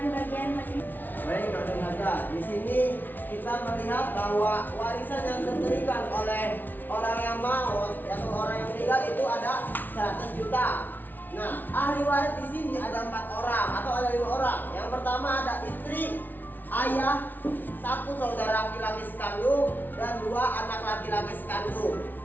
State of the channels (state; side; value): late; right; 0.087 ms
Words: bagian masing. Baik, saudara, di sini kita melihat bahwa warisan yang diberikan oleh orang yang maut atau orang yang meninggal itu ada 100 juta. Nah, ahli waris di sini ada 4 orang atau ada 5 orang. Yang pertama ada istri, ayah, 1 saudara laki-laki sekandung, dan 2 anak laki-laki sekandung.